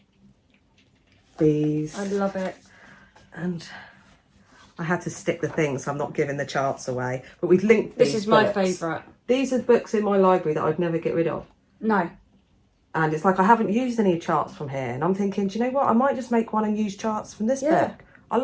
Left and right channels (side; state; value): both; identical; correlation 1.00